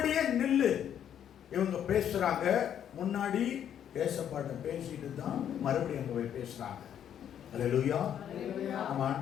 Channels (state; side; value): quieter; right; 9.6 dB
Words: நில்லு. இவங்க பேசுறாங்க. முன்னாடி ஏசப்பாட்ட பேசிட்டு தான் மறுபடியும் அங்க போய் பேசுறாங்க. அல்லேலூயா. நம்ம